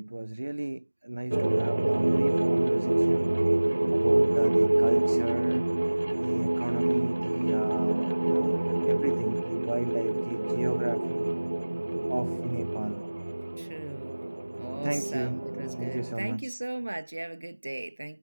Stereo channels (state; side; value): inverted; both; correlation -1.00